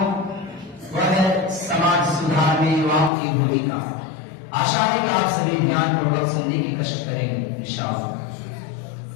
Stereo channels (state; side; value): drops out; right; at 3.1 s